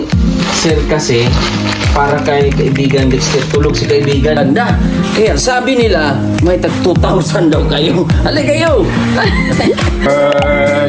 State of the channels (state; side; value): identical; both; correlation 1.00